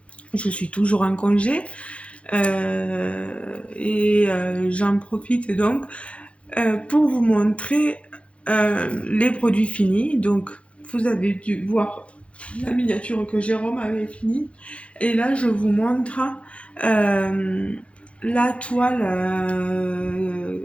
je suis toujours en congé j'en profite donc pour vous montrer les produits finis. Donc vous avez dû voir la miniature que Jérôme avait finie. Et là, je vous montre euh, la toile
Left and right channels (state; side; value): late; right; 0.061 ms